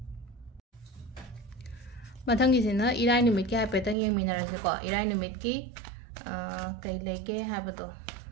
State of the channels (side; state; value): left; drops out; at 4.0 s